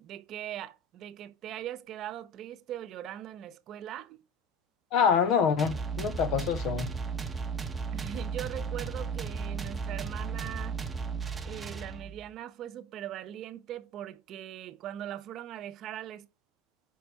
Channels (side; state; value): both; normal; correlation 0.34